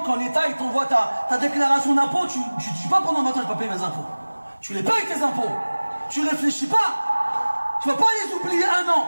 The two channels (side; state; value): both; inverted; correlation -1.00